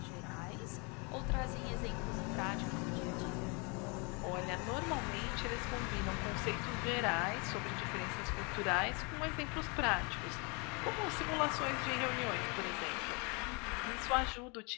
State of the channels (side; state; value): right; quieter; 31.6 dB